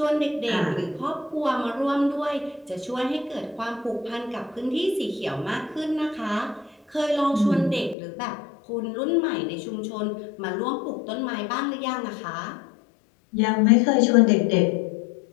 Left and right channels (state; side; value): drops out; right; at 8.0 s